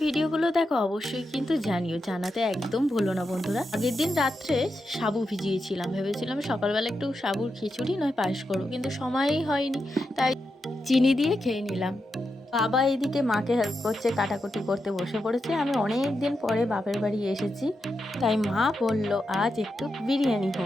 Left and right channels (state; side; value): normal; both; correlation 0.87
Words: ভিডিওগুলো দেখো অবশ্যই কিন্তু জানিও, জানাতে একদম ভুলো না বন্ধুরা। আগের দিন রাত্রে সাবু ভিজিয়েছিলাম, ভেবেছিলাম সকালবেলা একটু সাবুর খিচুড়ি নয় পায়েস করবো, কিন্তু সময়ই হয়নি, তাই চিনি দিয়ে খেয়ে নিলাম। বাবা এদিকে মাকে হেল্প করছে, কাটাকুটি করতে বসে পড়েছে। আমি অনেক দিন পরে বাপের বাড়ি এসেছি, তাই মা বলল আজ একটু বিরিয়ানি